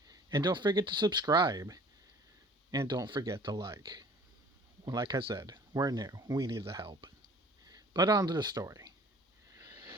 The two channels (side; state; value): both; normal; correlation 0.50